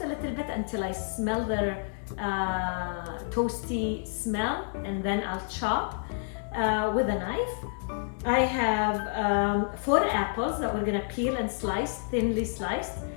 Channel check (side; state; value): right; silent; 58 dB below the other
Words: a little bit until I smell their toasty smell, and then I'll chop with a knife. I have 4 apples that we're gonna peel and slice, thinly sliced,